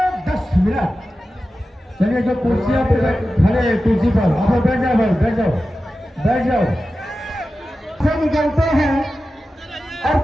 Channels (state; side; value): normal; both; correlation 0.93